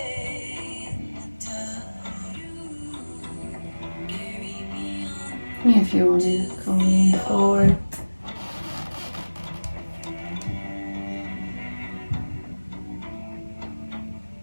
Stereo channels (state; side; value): inverted; both; correlation -1.00